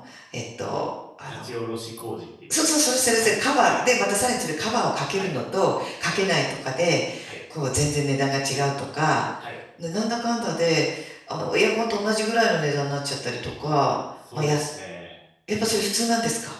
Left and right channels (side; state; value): both; identical; correlation 1.00